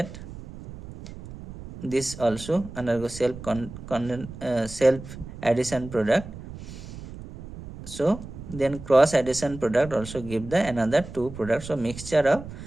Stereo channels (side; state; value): right; noise; rumble, 13 dB below the sound